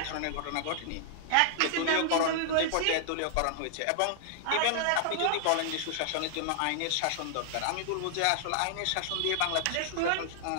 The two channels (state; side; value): different; both; correlation -0.01